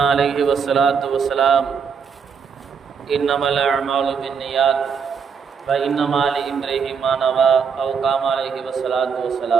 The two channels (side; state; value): left; quieter; 6.4 dB